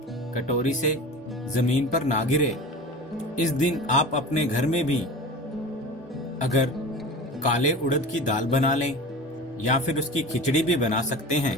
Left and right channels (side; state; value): both; normal; correlation 0.34